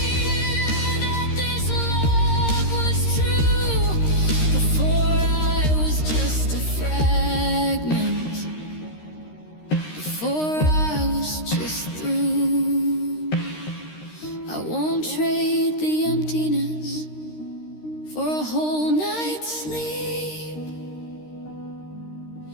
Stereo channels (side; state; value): right; late; 13 ms